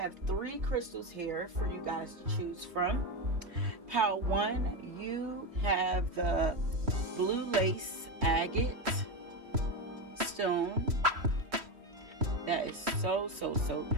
3 crystals here for you guys to choose from. Pile 1, you have the blue lace agate stone. That is so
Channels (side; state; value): left; late; 3.3 ms